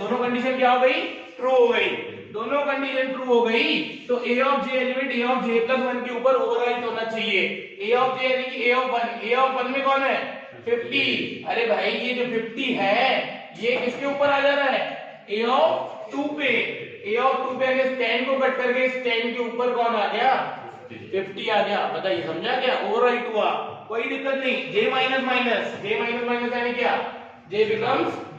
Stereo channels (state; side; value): identical; both; correlation 1.00